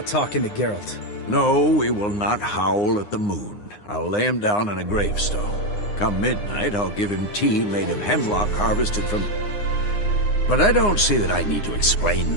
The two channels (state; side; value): late; right; 9.7 ms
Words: talking to Geralt. No, we will not howl at the moon. I'll lay him down in a gravestone. Come midnight, I'll give him tea made of hemlock harvested from... But I don't see that I need to explain